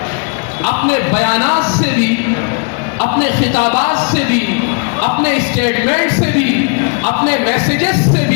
اپنے بیانات سے بھی اپنے خطابات سے بھی، اپنے اسٹیٹمنٹ سے بھی، اپنے میسیجز سے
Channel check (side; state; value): right; quieter; 37.8 dB